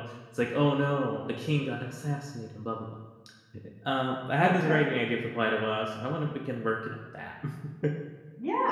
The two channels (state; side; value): identical; both; correlation 1.00